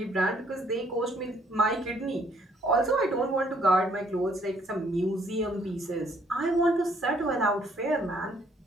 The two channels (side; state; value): both; normal; correlation 0.65